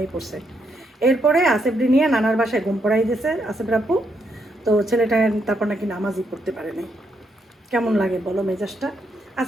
পড়ছে। এরপরে আসেফটি নিয়ে নানার বাসায় ঘুম পড়াই দিয়েছে আসেফের আব্বু। তো ছেলেটা তারপর নাকি নামাজই পড়তে পারে নাই। কেমন লাগে বলো মেজাজটা?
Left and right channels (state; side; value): normal; both; correlation 0.77